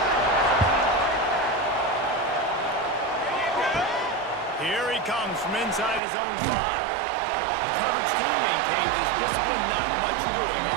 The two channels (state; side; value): drops out; left; at 6.0 s